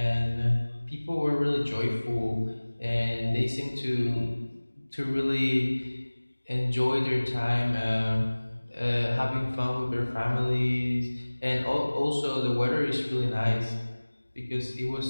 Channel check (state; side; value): inverted; both; correlation -1.00